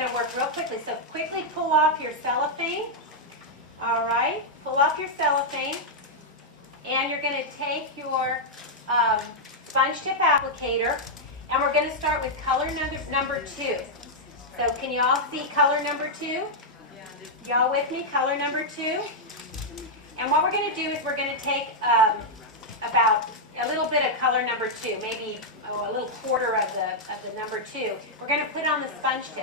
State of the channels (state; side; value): normal; both; correlation -0.04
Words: to work real quickly. So quickly pull off your cellophane. All right, pull off your cellophane. And you're going to take your sponge tip applicator, and we're going to start with color number 2. So can you all see color number 2? Y'all with me? Color number 2. And what we're going to do is we're going to take about a little bit of color number 2, maybe a little quarter of the number 2. We're going to put it on the sponge